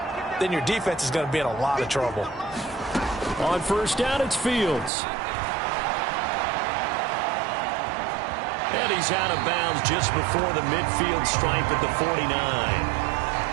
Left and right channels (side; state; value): left; drops out; at 4.9 s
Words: then your defense is going to be in a lot of trouble. On first down, it's Fields. And he's out of bounds just before the midfield stripe at the 49.